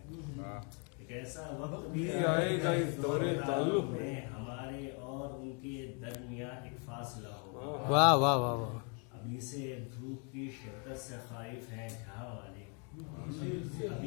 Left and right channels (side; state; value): right; quieter; 37.9 dB